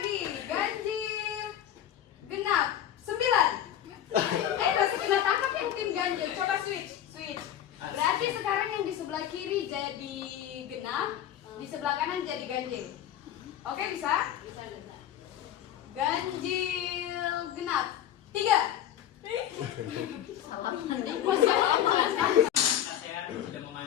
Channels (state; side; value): quieter; right; 11.1 dB